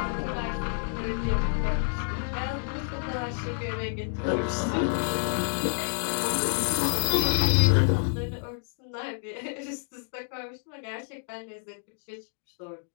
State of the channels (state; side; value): silent; right; 59 dB below the other